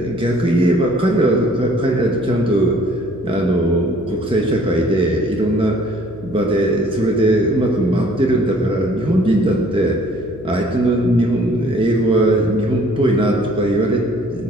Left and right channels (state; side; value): noise; left; hum, 18 dB below the sound